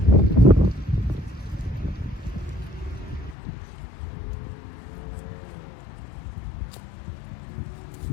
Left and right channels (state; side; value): drops out; right; at 3.4 s